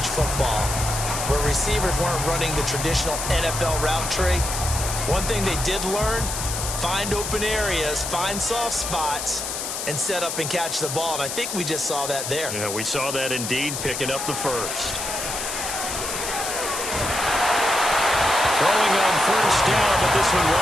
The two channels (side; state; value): left; noise; hiss, 4 dB below the sound